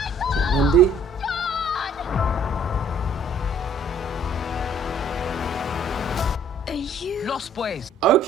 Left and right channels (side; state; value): both; normal; correlation 0.57